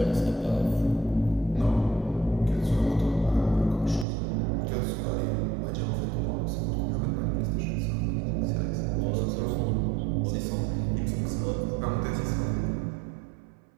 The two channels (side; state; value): left; drops out; at 4.0 s